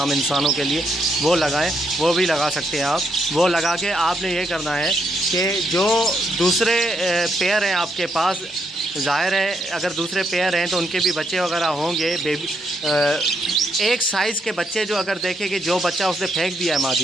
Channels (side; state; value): both; normal; correlation 0.77